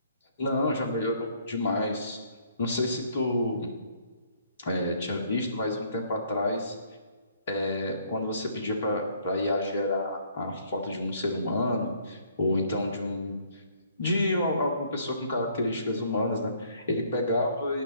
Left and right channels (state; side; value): inverted; both; correlation -0.63